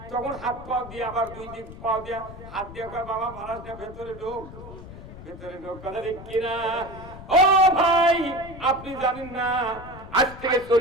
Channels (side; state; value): left; noise; rumble, 14 dB below the sound